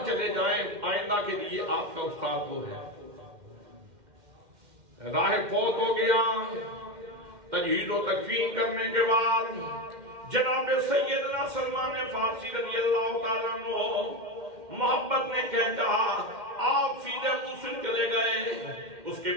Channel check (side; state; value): left; late; 2.1 ms